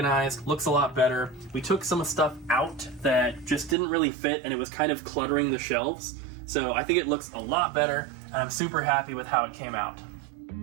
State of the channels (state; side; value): drops out; left; at 3.8 s